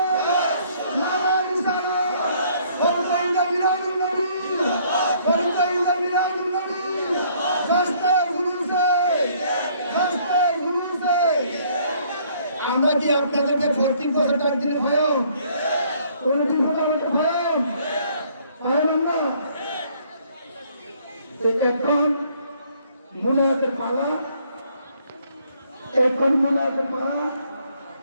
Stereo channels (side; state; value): both; inverted; correlation -0.63